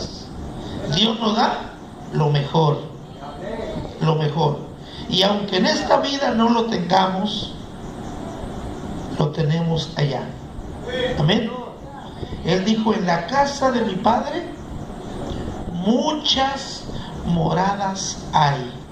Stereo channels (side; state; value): both; identical; correlation 1.00